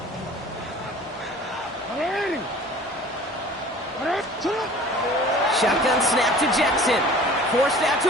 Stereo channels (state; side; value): normal; both; correlation 0.46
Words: Shotgun snap to Jackson. Forced out